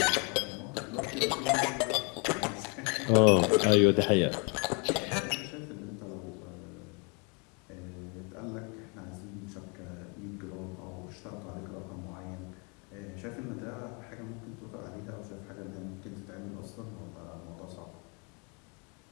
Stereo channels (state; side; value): quieter; right; 33.5 dB